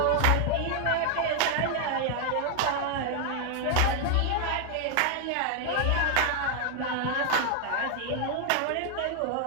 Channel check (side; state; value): both; different; correlation 0.00